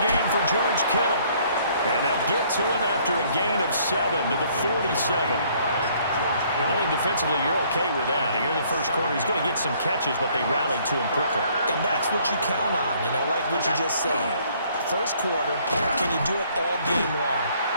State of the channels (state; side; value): inverted; both; correlation -0.62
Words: for George Kittle. And they'll get to him after a gain of 7 to the 47. I think defensively you're okay with that. Here in the first quarter, he's going to get some catches, but they rallied to him quickly. And that's what you count on, and I like what you just said. First quarter, can you do it all game long?